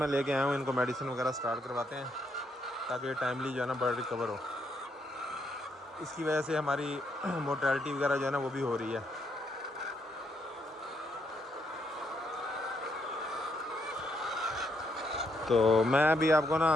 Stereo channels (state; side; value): normal; both; correlation 0.76